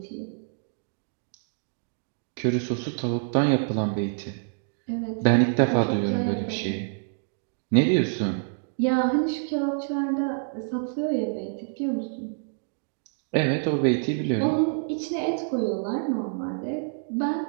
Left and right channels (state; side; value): silent; left; digital silence